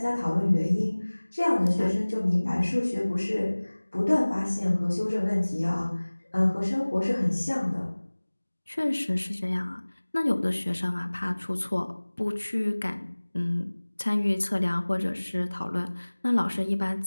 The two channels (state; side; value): inverted; both; correlation -1.00